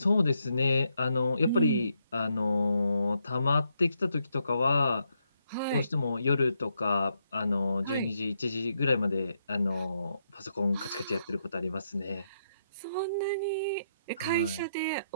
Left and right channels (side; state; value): both; inverted; correlation -0.79